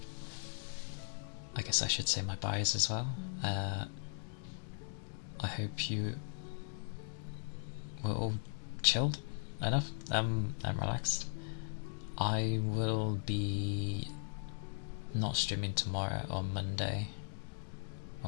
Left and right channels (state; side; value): silent; right; digital silence